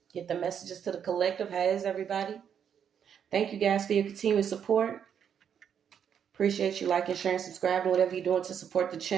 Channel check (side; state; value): left; quieter; 8.2 dB